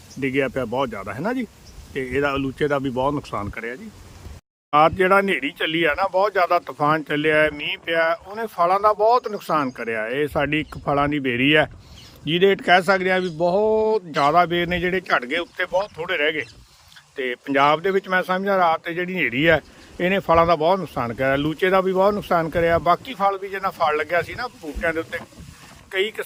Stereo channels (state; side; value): identical; both; correlation 1.00